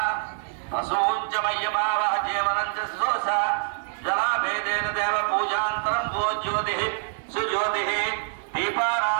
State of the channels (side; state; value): left; silent; digital silence